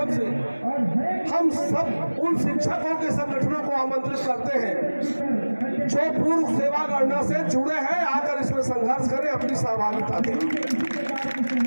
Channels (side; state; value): both; inverted; correlation -1.00